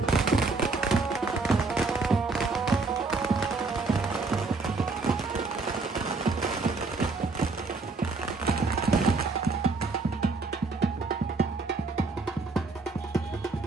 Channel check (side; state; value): left; quieter; 3.8 dB